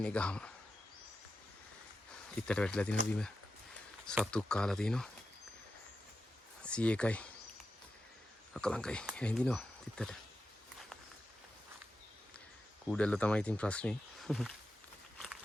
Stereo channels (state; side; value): normal; both; correlation 0.90